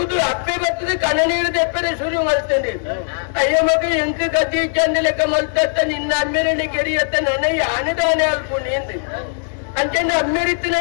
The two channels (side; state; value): right; silent; digital silence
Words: ಅಪ್ಪೆ ಬರ್ತದೆ ಕಣ ನೀರು ತೆಪ್ಪರೆ ಶುರು ಮಲ್ತಂಡಿ ಅಯ್ಯ ಮಗ ಎಂಕ ಗತಿ ಚಂದ ಲೆಕ್ಕ ಮಲ್ತತ್ತ ನಿನ್ನ ಅಮ್ಮೇರನೆ ಕೆರಿಯತ್ತ ನನಗೆ ಆನೆದಾನೆ ಅಲ್ಪ ನಿಂದು ಅಂಚೆಂದು